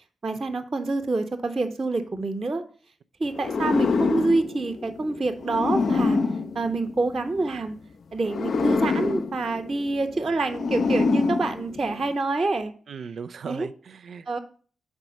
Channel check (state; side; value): normal; both; correlation 0.88